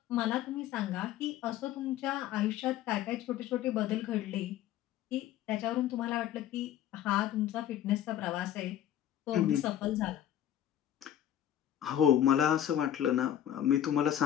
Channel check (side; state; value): right; quieter; 11.3 dB